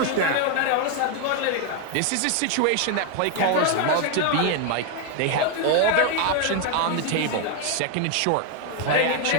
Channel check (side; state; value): both; different; correlation 0.01